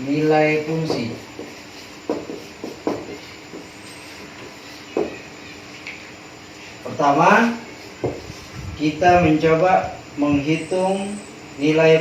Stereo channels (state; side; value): identical; both; correlation 1.00